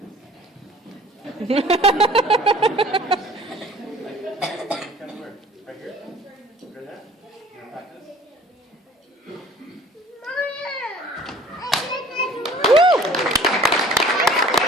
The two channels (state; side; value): normal; both; correlation 0.50